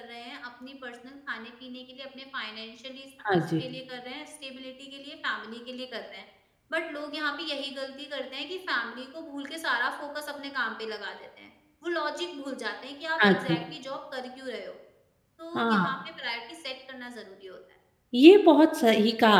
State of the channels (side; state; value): both; identical; correlation 1.00